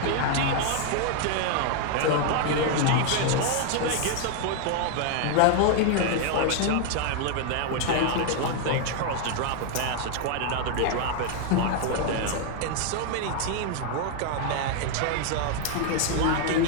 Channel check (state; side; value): different; both; correlation 0.00